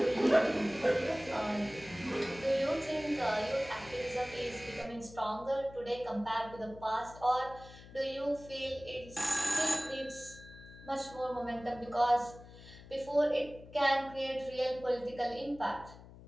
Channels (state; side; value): noise; left; hum, 18 dB below the sound